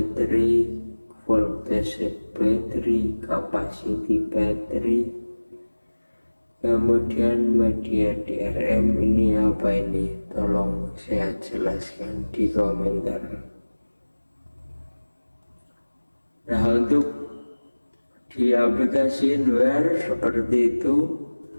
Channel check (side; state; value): both; inverted; correlation -1.00